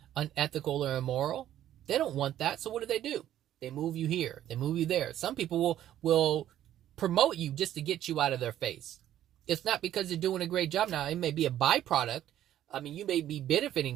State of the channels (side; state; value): left; quieter; 11.9 dB